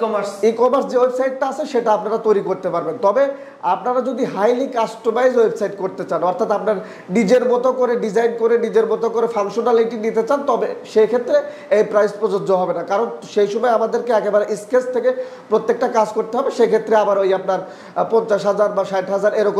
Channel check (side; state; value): both; identical; correlation 1.00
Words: ই-কমার্স যে ওয়েবসাইটটা আছে সেটা আপনারা তৈরি করতে পারবেন। তবে আপনারা যদি হাইলি কাস্টমাইজ ওয়েবসাইট করতে চান, অর্থাৎ আপনার নিজের মতো করে ডিজাইন করে নিজের মতো করে ফাংশনালিটি নিতে চান, তবে সেই ক্ষেত্রে এই প্রাইস প্রযোজ্য হবে না, কারণ সেই সময় আমাদেরকে একেবারে স্কেচ থেকে প্রত্যেকটা কাজ করতে হবে। সেক্ষেত্রে আবার ওই আপনার 50,000 বা 60,000